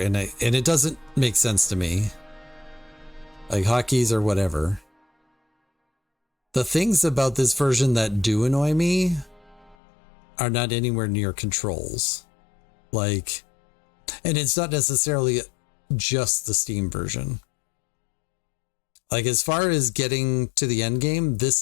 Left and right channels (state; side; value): drops out; right; at 9.8 s